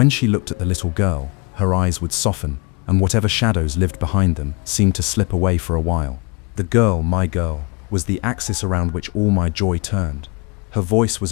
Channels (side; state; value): right; quieter; 30.7 dB